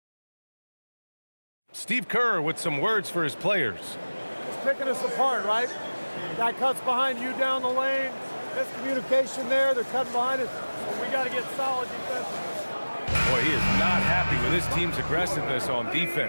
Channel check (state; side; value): inverted; both; correlation -1.00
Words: Steve Kerr with some words for his players. It's picking us apart, right? Guy cuts behind you down the lane. Miscommunication there. They're cutting behind us. So we got to get solid defensively. Boy, he is not happy with his team's aggressiveness on